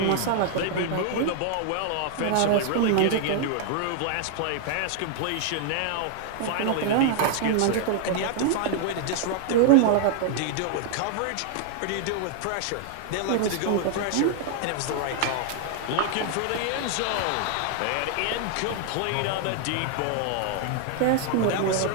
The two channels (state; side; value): different; both; correlation 0.00